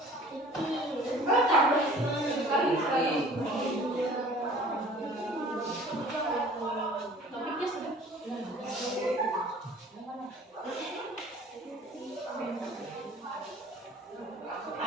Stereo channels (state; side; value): normal; both; correlation 0.48